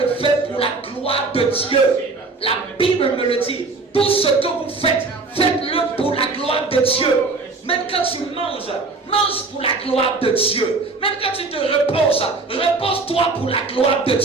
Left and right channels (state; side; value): quieter; left; 3.8 dB